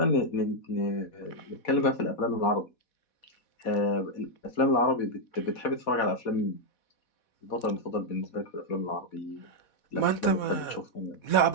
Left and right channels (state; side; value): late; right; 4.1 ms